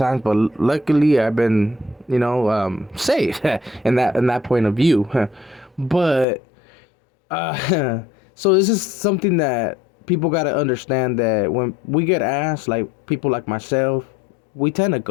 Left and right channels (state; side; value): drops out; right; at 6.2 s